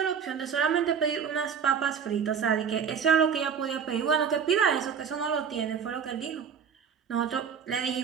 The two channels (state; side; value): quieter; left; 7.1 dB